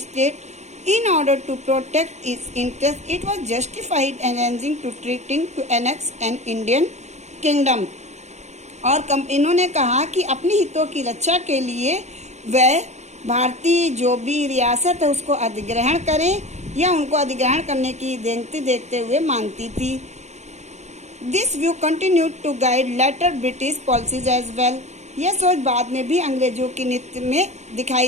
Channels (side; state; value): left; late; 0.33 ms